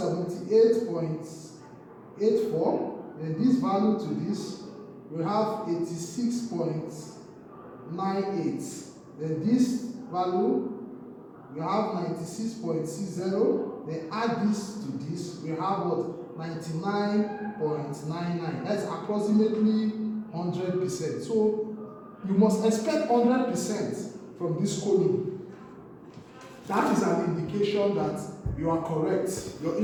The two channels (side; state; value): both; identical; correlation 1.00